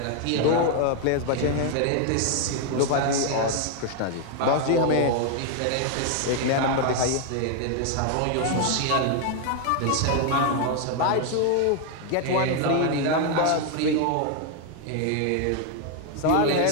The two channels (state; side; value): different; both; correlation 0.01